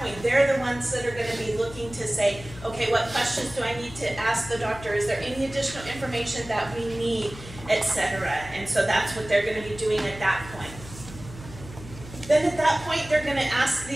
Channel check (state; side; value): noise; left; hum, 15 dB below the sound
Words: they're the ones that are going to be looking to say, okay, what questions do I need to ask the doctor? Is there any additional information that we need, etc.? And so that's what they're going to be doing at that point. Then at that point, they're going to ask